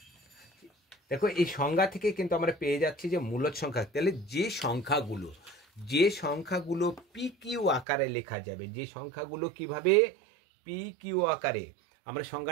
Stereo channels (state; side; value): drops out; left; at 7.9 s